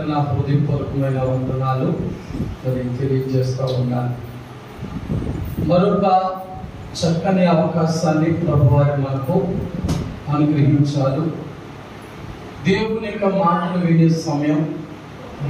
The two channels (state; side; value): identical; both; correlation 1.00